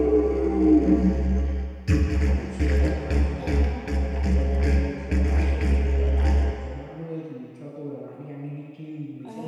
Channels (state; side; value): identical; both; correlation 1.00